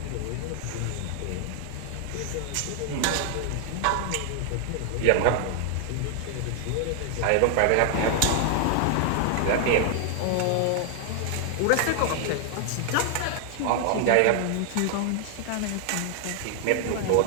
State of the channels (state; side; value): different; both; correlation 0.00